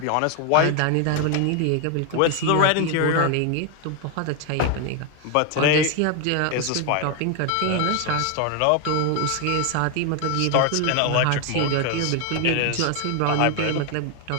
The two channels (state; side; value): different; both; correlation 0.01